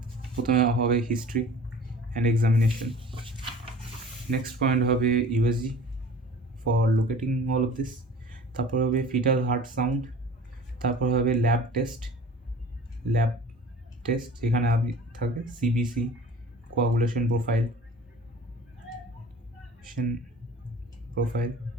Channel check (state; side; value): normal; both; correlation 0.44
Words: প্রথমে হবে history and examination, next point হবে USG for locating all of this, তারপর হবে ফিটাল হার্ট সাউন্ড, তারপর হবে ল্যাব টেস্ট, এখানে আপনি থাকবে CBC, coagulation profile,